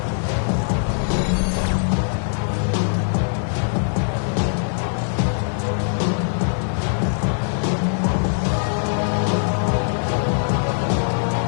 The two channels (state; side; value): silent; right; digital silence